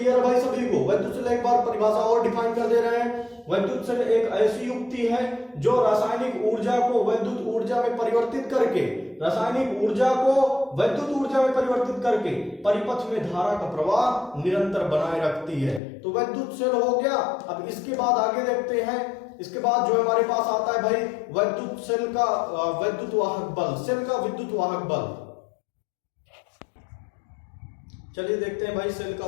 भाई सभी को? वैद्युत सेल एक बार परिभाषा और डिफाइन कर दे रहे हैं। वैद्युत सेल एक ऐसी युक्ति है जो रासायनिक ऊर्जा को वैद्युत ऊर्जा में परिवर्तित करके, रासायनिक ऊर्जा को वैद्युत ऊर्जा में परिवर्तित करके परिपथ में धारा का प्रवाह निरंतर बनाए रखती है। तो वैद्युत सेल हो गया। अब इसके बाद आगे देखते हैं, इसके बाद जो हमारे पास आता है भाई वैद्युत सेल का वैद्युत वाहक बल, सेल का विद्युत वाहक बल। चलिए देखते हैं भाई सेल का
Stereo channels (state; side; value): drops out; right; at 15.8 s